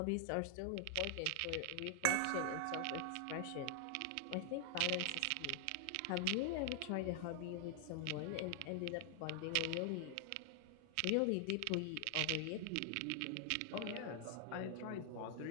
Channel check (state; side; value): different; both; correlation 0.00